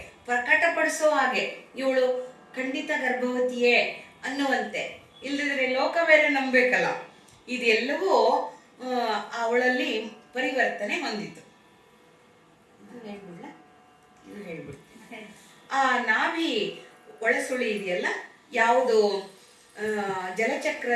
ಪ್ರಕಟಪಡಿಸೋ ಹಾಗೆ ಇವಳು ಖಂಡಿತ ಗರ್ಭವತಿಯೇ ಅನ್ನುವಂತೆ. ಇಲ್ಲದಿದ್ರೆ ಲೋಕ ಬೇರೆ ನಂಬಬೇಕಲ್ಲ. ಇದೆಲ್ಲವೂ ಅವಳಲ್ಲಿ ಪರಿವರ್ತನೆ ಹೊಂದಿತು. ಹೇಳ್ಬಿಡ್ತೀನಿ. ಆ ನಾಭಿ ಒಳಸುಳಿ ಇದೆಯಲ್ಲ, ಯಾವುದು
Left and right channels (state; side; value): identical; both; correlation 1.00